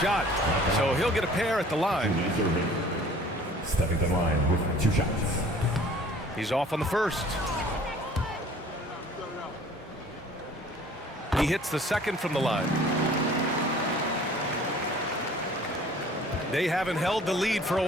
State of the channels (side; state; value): both; normal; correlation 0.51